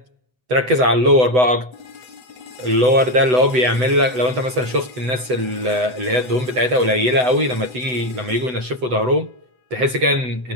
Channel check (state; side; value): late; left; 8.0 ms